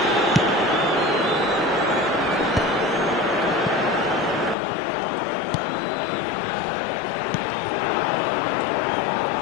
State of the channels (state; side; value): drops out; right; at 4.5 s